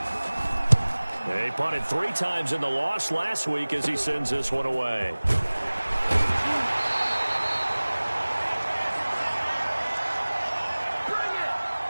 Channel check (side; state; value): both; inverted; correlation -1.00